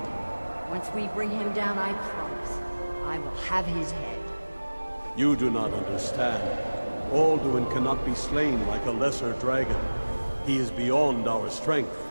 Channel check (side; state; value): both; inverted; correlation -1.00